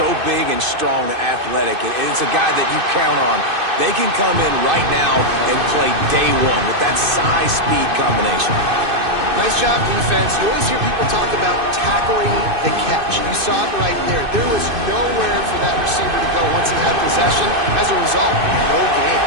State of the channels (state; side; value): late; left; 2.6 ms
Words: big and strong and athletic. And it's a guy that you count on. They can come in right now and play day one with that size-speed combination. Nice job, defense. You always hear people talk about tackling the catch. You saw it right there. There was nowhere for that receiver to go once he had possession. As a result, no gain.